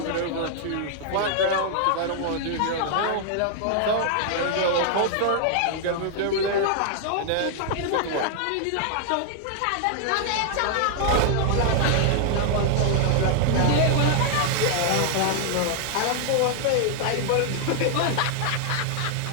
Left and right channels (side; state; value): both; different; correlation 0.00